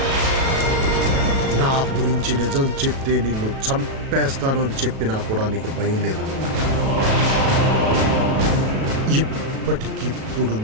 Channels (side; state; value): left; late; 37 ms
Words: నా గురించి నిజం చెప్తే నిన్ను చంపేస్తాను అని చెప్పినా కూడా నీకు భయం లేదన్నమాట. ఇప్పటికిప్పుడు